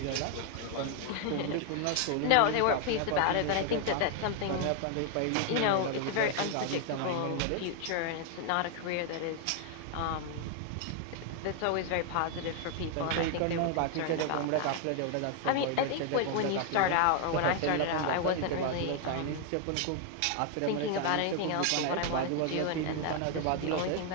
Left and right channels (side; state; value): both; different; correlation 0.00